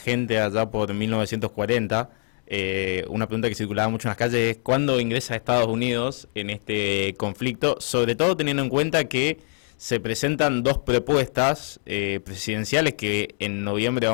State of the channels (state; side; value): silent; right; 57 dB below the other